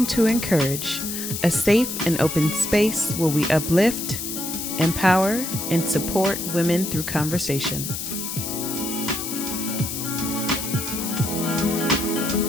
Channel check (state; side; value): noise; left; hiss, 5 dB below the sound